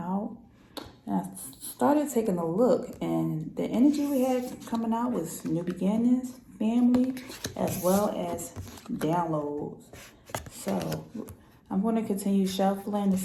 And I started taking a look, and the energy we had coming out was new beginnings, family, as well as downloads. So I'm going to continue shuffling to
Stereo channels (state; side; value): identical; both; correlation 1.00